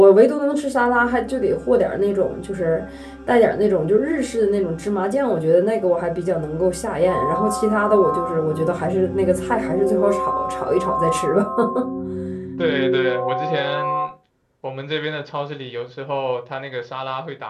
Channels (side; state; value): both; identical; correlation 1.00